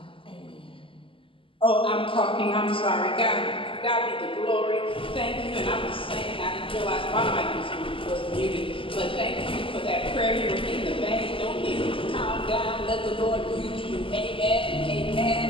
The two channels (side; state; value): right; late; 0.25 ms